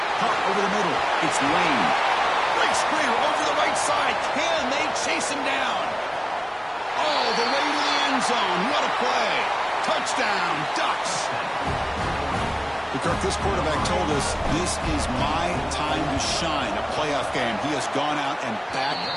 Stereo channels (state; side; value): identical; both; correlation 1.00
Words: Cut over the middle. It's Lane. Great screener over the right side. Can they chase him down? All the way to the end zone. What a play. Touchdown, Ducks. Kirk, this quarterback told us this is my time to shine, a playoff game. He has gone out and backed